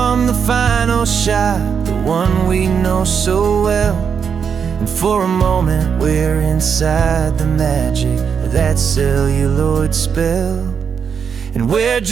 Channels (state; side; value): quieter; left; 6.8 dB